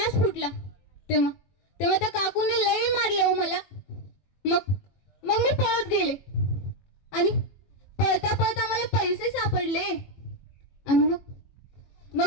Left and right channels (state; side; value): late; right; 21 ms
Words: फुटला. तेव्हा त्या काकूने लई मारलं हो मला. मग मी पळत गेले आणि पळता पळता मला पैसे सापडले आणि